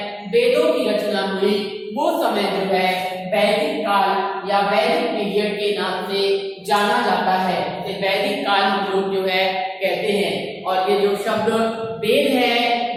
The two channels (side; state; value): both; identical; correlation 1.00